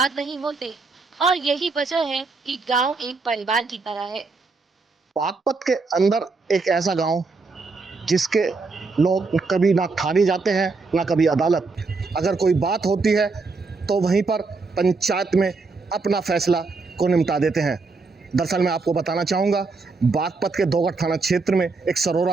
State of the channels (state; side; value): quieter; left; 4.1 dB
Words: नहीं होते, और यही वजह है कि गांव एक परिवार की तरह है। बागपत के अंदर एक ऐसा गांव जिसके लोग कभी ना थाने जाते हैं ना कभी अदालत। अगर कोई बात होती है तो वहीं पर पंचायत में अपना फैसला को निपटा देते हैं। दरअसल मैं आपको बताना चाहूँगा, बागपत के दोगढ़ थाना क्षेत्र में एक